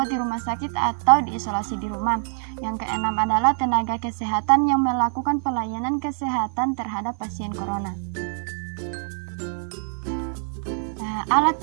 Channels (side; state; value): left; silent; digital silence